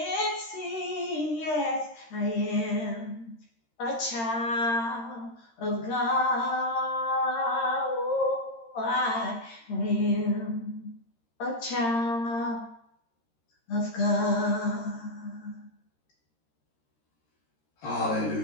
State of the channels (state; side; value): late; right; 13 ms